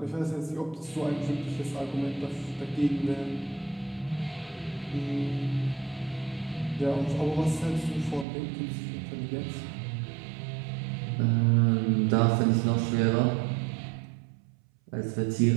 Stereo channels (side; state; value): left; drops out; at 8.2 s